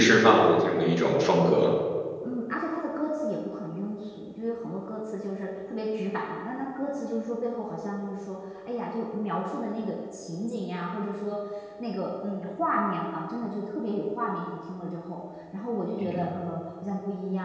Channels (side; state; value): both; identical; correlation 1.00